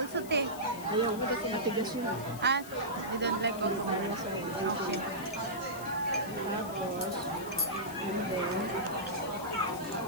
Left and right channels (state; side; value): noise; left; hiss, 15 dB below the sound